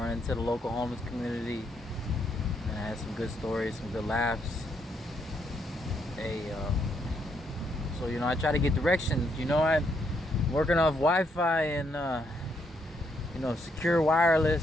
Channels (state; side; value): normal; both; correlation 0.75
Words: into the local homeless community, and I had some good stories, some good laughs. Hey, so I try to get directions. I'm working off Wi-Fi and secure